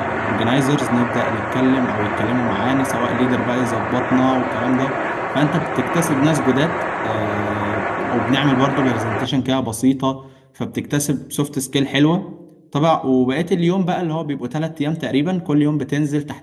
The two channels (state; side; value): identical; both; correlation 1.00